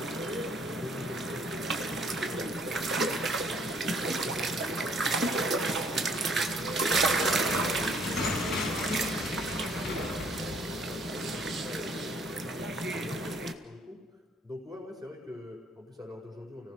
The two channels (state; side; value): normal; both; correlation 0.62